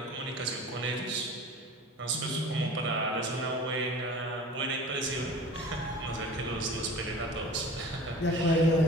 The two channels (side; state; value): both; normal; correlation 0.40